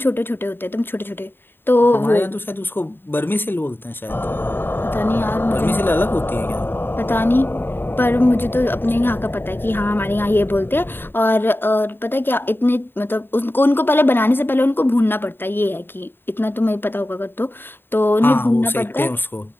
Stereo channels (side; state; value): right; late; 0.10 ms